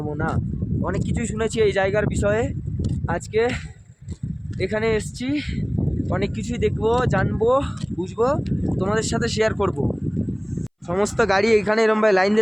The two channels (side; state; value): both; identical; correlation 1.00